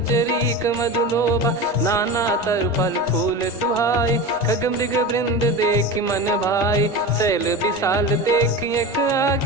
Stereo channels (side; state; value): both; normal; correlation 0.27